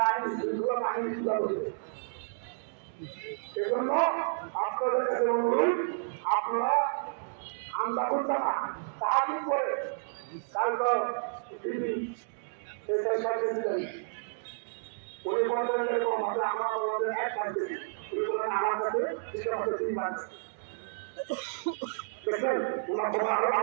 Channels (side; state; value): left; silent; digital silence